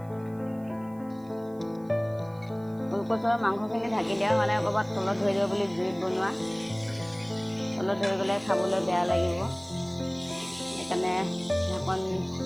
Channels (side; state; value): right; noise; hiss, 30 dB below the sound